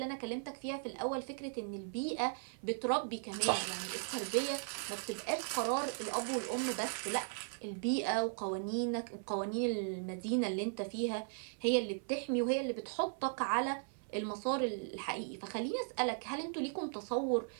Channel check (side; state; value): left; silent; 53 dB below the other